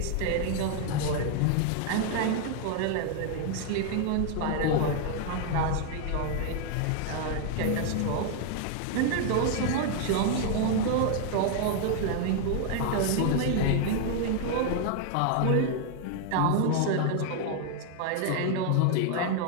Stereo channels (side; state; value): both; different; correlation 0.00